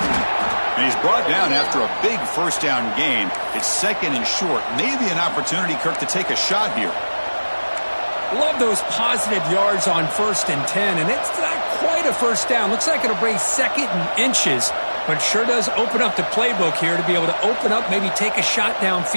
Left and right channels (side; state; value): both; inverted; correlation -1.00